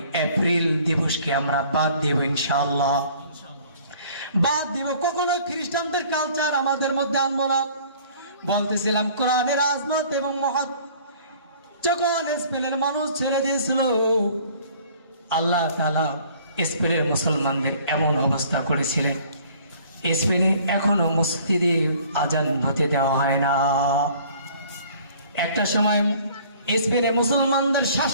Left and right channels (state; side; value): inverted; both; correlation -0.53